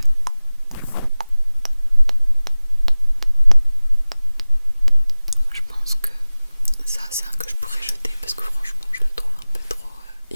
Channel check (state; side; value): inverted; both; correlation -0.99